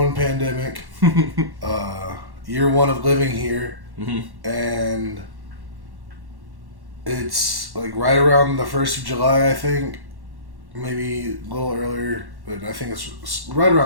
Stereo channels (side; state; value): left; late; 1.1 ms